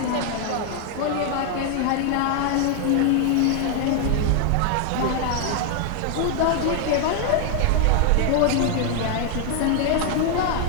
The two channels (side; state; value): both; different; correlation 0.00